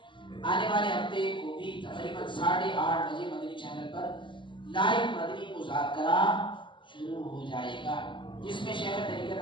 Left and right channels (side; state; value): right; late; 0.24 ms